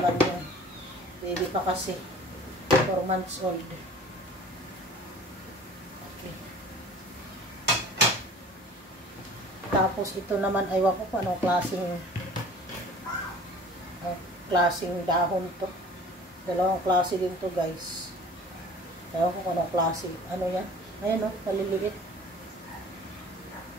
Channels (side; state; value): both; normal; correlation 0.46